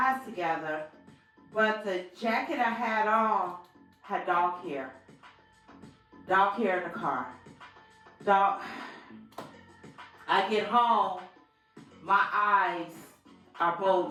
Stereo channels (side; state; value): both; identical; correlation 1.00